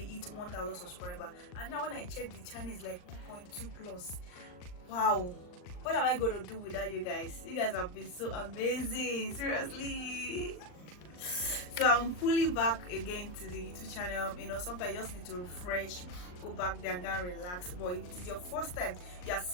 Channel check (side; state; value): right; late; 39 ms